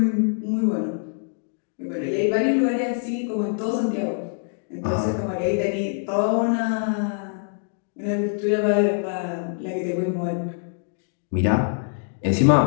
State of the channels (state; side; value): silent; right; digital silence